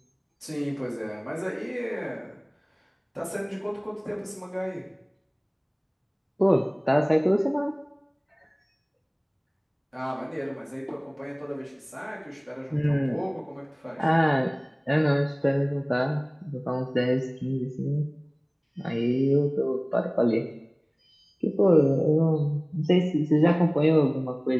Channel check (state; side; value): identical; both; correlation 1.00